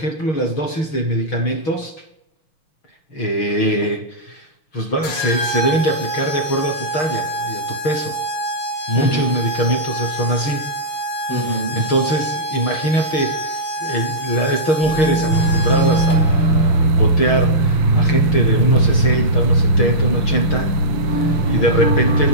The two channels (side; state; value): right; late; 6.4 ms